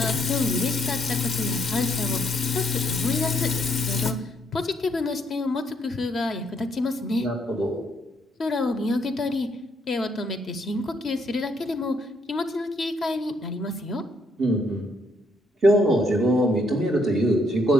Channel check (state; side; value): normal; both; correlation 0.71